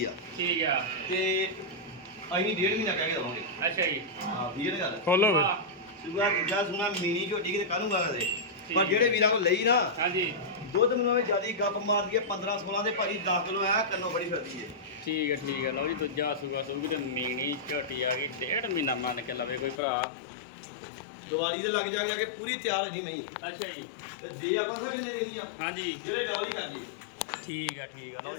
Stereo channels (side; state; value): right; drops out; at 19.8 s